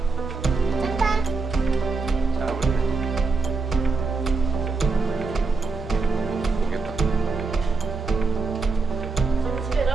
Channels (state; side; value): quieter; left; 4.2 dB